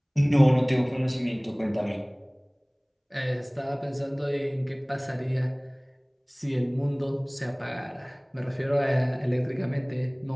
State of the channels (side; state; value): both; identical; correlation 1.00